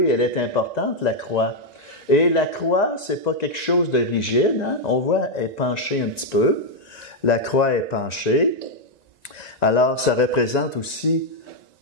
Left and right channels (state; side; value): late; right; 1.9 ms